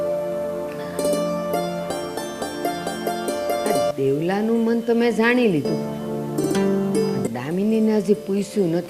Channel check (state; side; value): identical; both; correlation 1.00